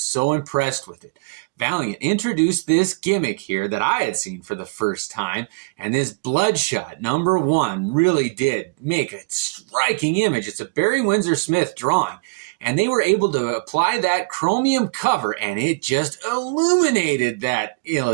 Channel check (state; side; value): quieter; left; 29.8 dB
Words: so impressed with it. Valiant introduced this gimmick here that I had seen for the first time, and this Bloodshot #1 really did make a striking image. It's a Barry Windsor Smith drawing, and they were able to apply that Chromium cover, and it just illuminated that